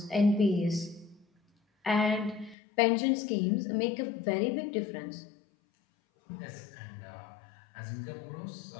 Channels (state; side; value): drops out; right; at 2.6 s